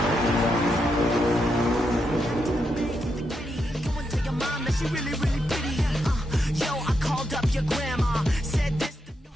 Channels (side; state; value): both; normal; correlation 0.83